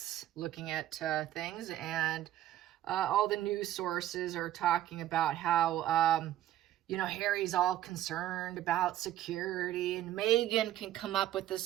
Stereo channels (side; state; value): left; quieter; 13.0 dB